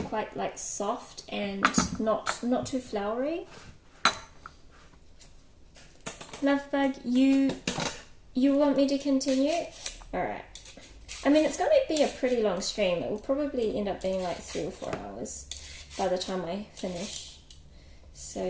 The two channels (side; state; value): both; identical; correlation 1.00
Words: quite like soft and not too floury. Lovebug, you want me to continue? Alright. I mean, it's going to be a pretty long stream. It will probably end up being like 3 or 4 hours by the time I finish.